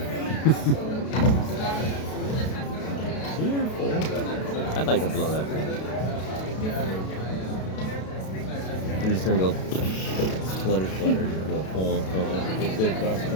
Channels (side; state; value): right; late; 32 ms